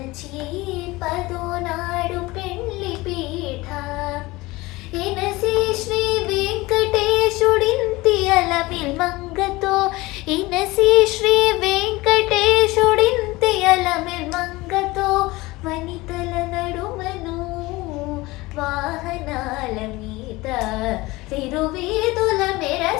పదో నాడు పెండ్లి పీఠ ఎనసి శ్రీ వెంకటేశుడింతి అలమిల్ మంగతో ఇనసి శ్రీ వెంకటేశుడింతి అలమిల్ మంగతో వనితల నడుమను వాహనాల మీద తిరువీధుల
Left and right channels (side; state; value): right; quieter; 20.9 dB